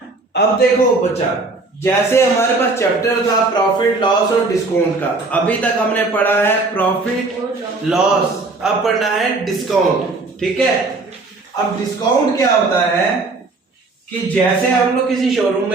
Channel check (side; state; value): left; quieter; 3.5 dB